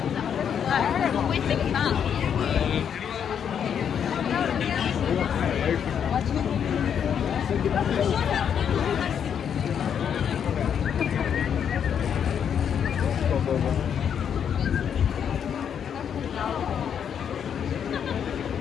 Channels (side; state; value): right; quieter; 8.1 dB